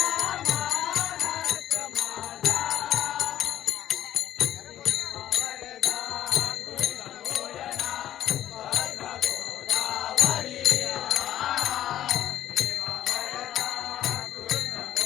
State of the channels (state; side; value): quieter; right; 12.0 dB